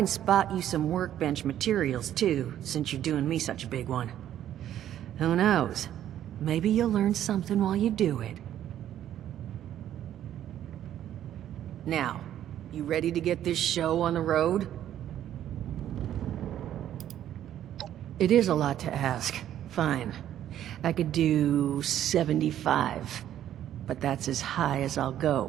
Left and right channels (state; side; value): quieter; left; 11.3 dB